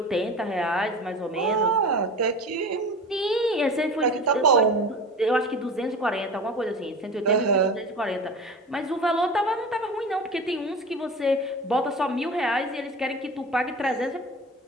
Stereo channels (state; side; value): normal; both; correlation 0.34